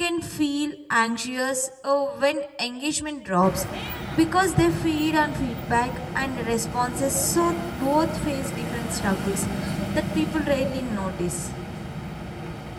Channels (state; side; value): identical; both; correlation 1.00